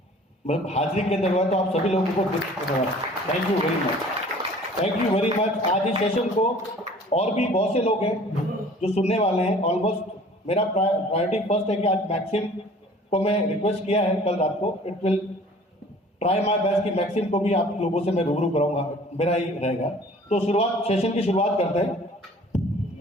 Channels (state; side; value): normal; both; correlation 0.50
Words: मतलब हाजिरी के अंदर हुआ। तो आप सभी लोगों को thank you very much, thank you very much. आज इस सेशन को और भी बहुत से लोग हैं जो सुनने वाले हैं। ऑलमोस्ट मेरा प्रायोरिटी फर्स्ट है कि आज मैक्सिम को मैं रिक्वेस्ट किया है कल रात को। It will try my best कि मैक्सिम को भी आप लोगों से मैं रूबरू कराऊंगा, मेरा ही रहेगा। तो शुरुआत, सेशन की शुरुआत करते हैं।